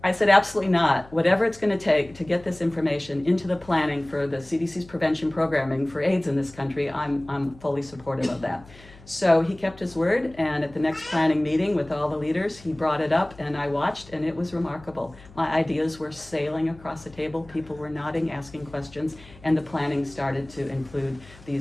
I said, absolutely not. Whatever it's going to take to get this information into the planning for the CDC's prevention programming for AIDS in this country, I'm fully supportive of that. So he kept his word, and at the next planning meeting with all the leaders, he brought it up, and I watched, and it was remarkable. My ideas were sailing across the table, people were nodding, asking questions, and the planning started to include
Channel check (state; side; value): noise; left; hum, 22 dB below the sound